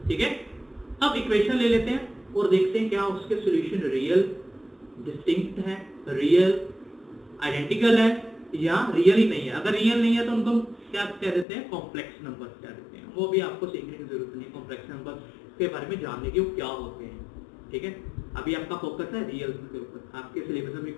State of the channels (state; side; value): drops out; right; at 11.5 s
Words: ठीक है, अब इक्वेशन ले लेते हैं और देखते हैं क्या उसके सॉल्यूशन रियल, डिस्टिंक्ट है, रियल, आइडेंटिकल है या रियल ही नहीं है। अगर रियल नहीं है तो उनको क्या कह देते हैं, कॉम्प्लेक्स नंबर कह देते हैं। वो भी आपको सीखने की जरूरत नहीं, कॉम्प्लेक्स नंबर के बारे में जानने की वो क्या होते हैं, ठीक है। अभी आपका फोकस है रियल के ऊपर, आपके सिलेबस में